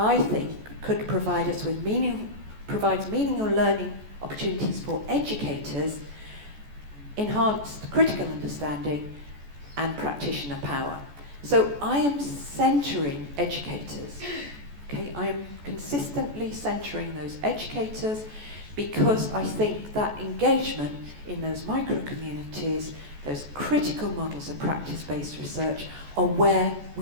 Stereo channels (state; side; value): late; left; 14 ms